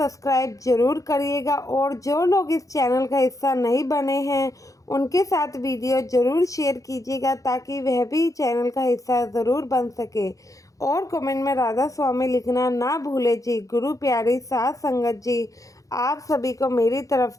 ज़रूर करिएगा, और जो लोग इस चैनल का हिस्सा नहीं बने हैं उनके साथ वीडियो ज़रूर शेयर कीजिएगा, ताकि वह भी चैनल का हिस्सा ज़रूर बन सके। और कमेंट में राधा स्वामी लिखना ना भूले जी। गुरु प्यारी साथ संगत जी, आप सभी को मेरी तरफ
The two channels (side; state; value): right; late; 0.16 ms